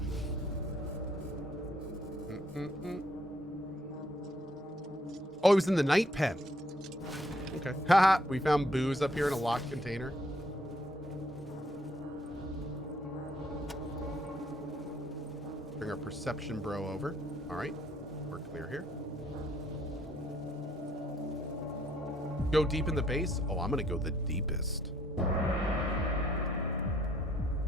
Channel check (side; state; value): both; normal; correlation 0.67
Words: Oh, he was in the night pen. Okay. Haha, we found booze up here in a locked container. Bring our perception bro over. All right, we're clear here. Go deep in the base? Oh, I'm gonna go the deepest.